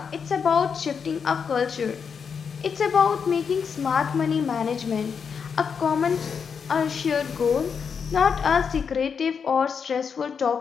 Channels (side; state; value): right; quieter; 6.4 dB